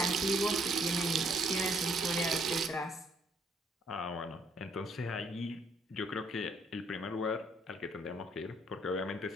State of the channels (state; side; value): normal; both; correlation 0.67